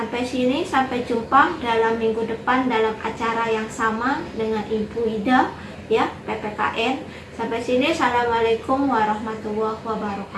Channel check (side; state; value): both; identical; correlation 1.00